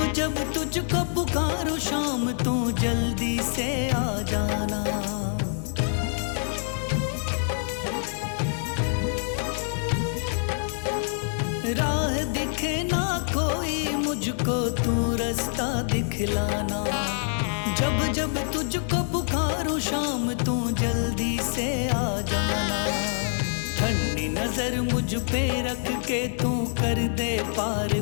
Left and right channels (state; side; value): silent; right; digital silence